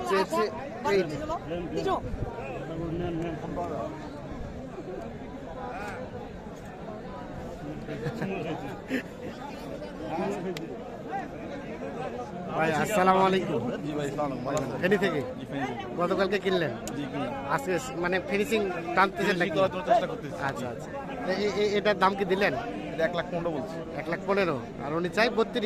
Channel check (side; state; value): both; identical; correlation 1.00